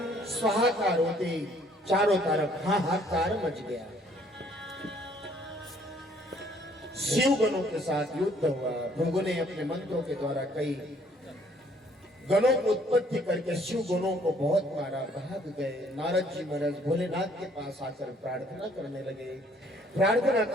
स्वाहाकार होती चारों तरफ हाहाकार मच गया। शिव गणों के साथ युद्ध हुआ। भृगु ने अपने मंत्रों के द्वारा कई गणों को उत्पत्ति करके शिव गणों को बहुत मारा, भाग गए। नारद जी महाराज भोलेनाथ के पास आकर प्रार्थना करने लगे। प्रार्थना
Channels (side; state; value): both; normal; correlation 0.62